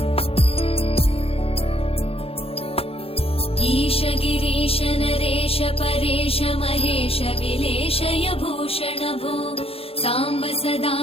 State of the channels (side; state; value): right; late; 0.28 ms